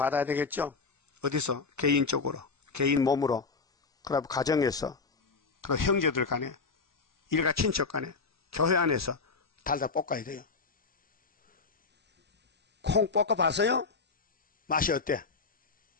되겠죠? 어디서? 개인적으로, 개인 몸으로, 그다음 가정에서, 그다음 형제들 간에, 일가 친척 간에, 교회 안에서 달달 볶아야 돼요. 콩 볶아 봤어요? 맛이 어때?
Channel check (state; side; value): quieter; right; 4.5 dB